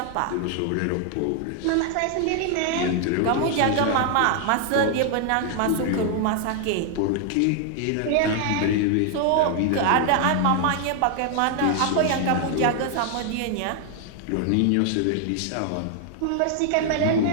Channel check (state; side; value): different; both; correlation 0.00